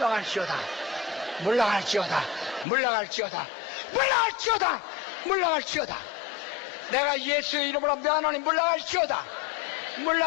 물러갈지어다. 물러갈지어다. 물러갈지어다. 물러갈지어다. 내가 예수의 이름으로 명하노니 물러갈지어다.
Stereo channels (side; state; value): right; drops out; at 2.7 s